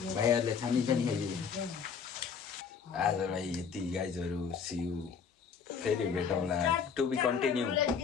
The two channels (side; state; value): right; quieter; 6.4 dB